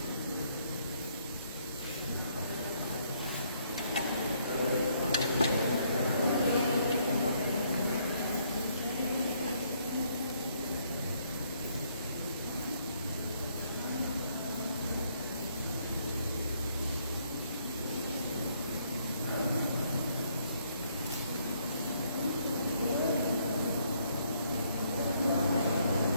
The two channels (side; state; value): both; inverted; correlation -0.69